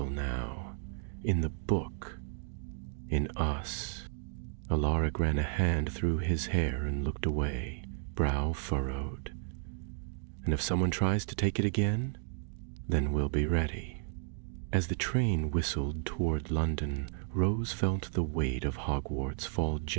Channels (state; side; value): silent; left; digital silence